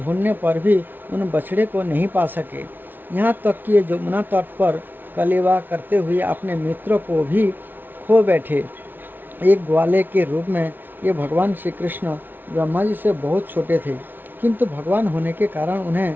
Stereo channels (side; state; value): left; late; 0.091 ms